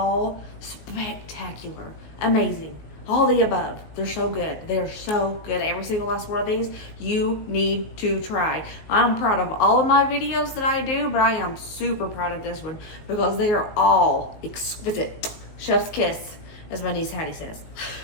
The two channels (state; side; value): late; right; 19 ms